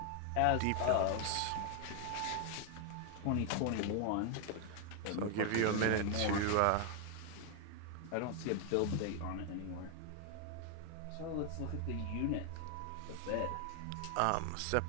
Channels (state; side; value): different; both; correlation 0.00